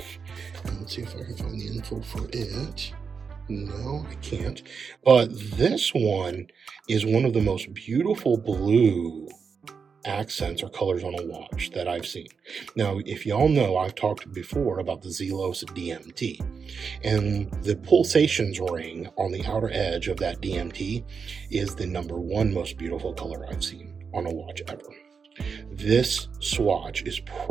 And let's see if I can find the info for it. No, I can't. But this one is one of the most beautiful blue accents or colors on a watch that I've seen. Now, if y'all know, I've talked before about the Zelos DMT, and the pulsations ring on the outer edge of that DMT is the #1 most beautiful color I've seen on a watch ever. This Swatch is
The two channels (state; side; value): quieter; left; 5.8 dB